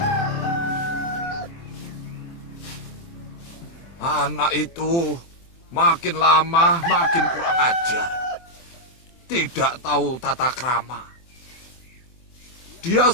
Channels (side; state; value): right; late; 23 ms